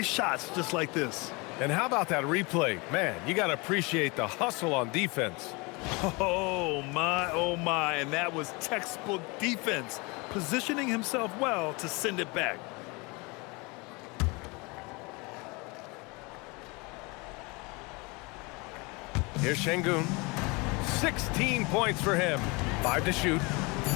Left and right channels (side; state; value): right; quieter; 27.3 dB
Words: shots just like this. And how about that replay? Man, you got to appreciate the hustle on defense. Oh, my, and that was textbook defense, positioning himself well to send it back. Here's Şengün. 16 points for him. 5 to shoot.